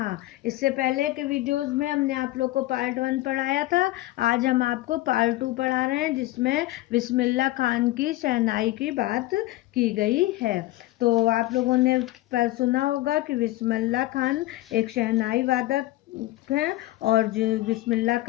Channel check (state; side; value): quieter; right; 17.3 dB